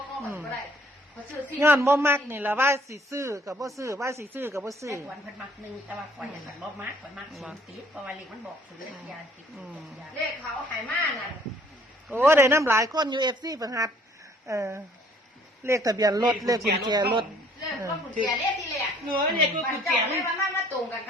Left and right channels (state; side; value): normal; both; correlation 0.59